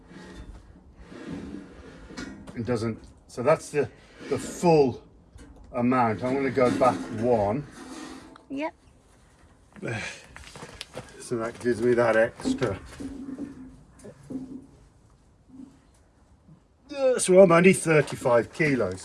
It doesn't, so that's the full amount. I'm going to go back one. Yep. So that gives me that extra. So I'm only 35 kilos,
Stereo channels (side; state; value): both; identical; correlation 1.00